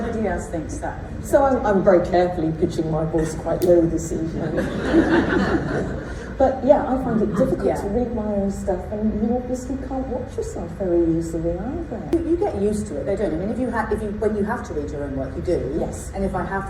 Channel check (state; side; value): identical; both; correlation 1.00